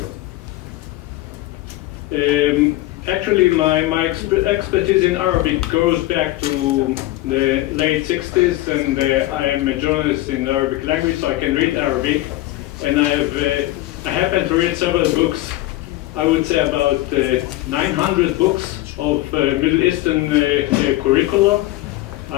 we go. Actually, my expertise in Arabic goes back to the late 60s, and I am a journalist in the Arabic language, so I can read Arabic. And I happen to read several books. I would say about 900 books of Middle Eastern curricula.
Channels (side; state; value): right; quieter; 17.1 dB